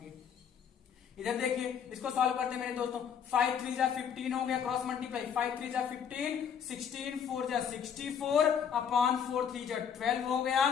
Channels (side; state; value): right; quieter; 7.7 dB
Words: इधर देखिए इसको सॉल्व करते हैं मेरे दोस्तों। 5 3 जा 15 हो गया, क्रॉस मल्टीप्लाई, 5 3 जा 15, 16 4 जा 64 अपॉन 4 3 जा 12 हो गया,